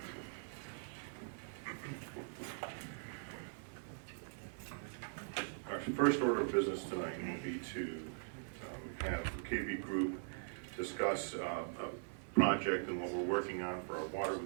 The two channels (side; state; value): left; silent; 50 dB below the other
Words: Our first order of business tonight will be to have the KB Group discuss a project and what we're working on for our water